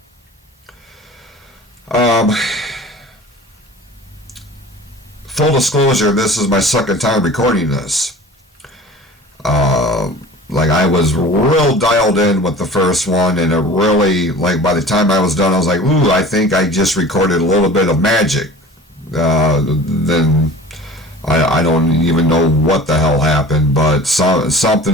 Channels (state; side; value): normal; both; correlation 0.42